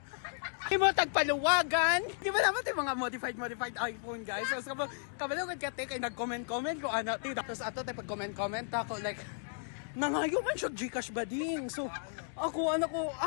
Di mo tagpaluwagan. Di ba naman yung mga modified iPhone guys. So, kabalo kay kate kay nag-comment ko ana ti. Tapos ato tay pag-comment ako like nangayo man siya GCash bading. So, ako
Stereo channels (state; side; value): silent; right; digital silence